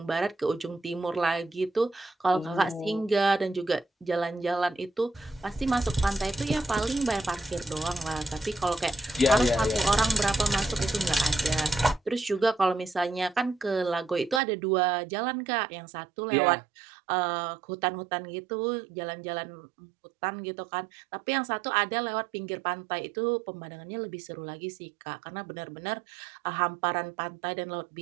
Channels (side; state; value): left; drops out; at 14.4 s